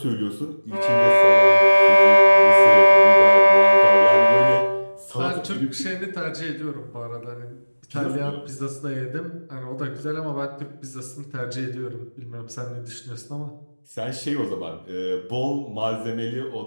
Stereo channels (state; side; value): inverted; both; correlation -1.00